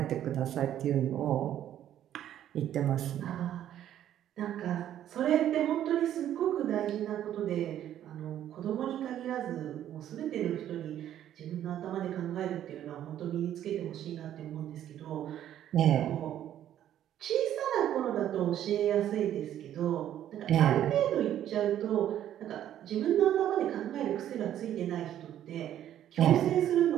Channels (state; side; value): quieter; left; 11.3 dB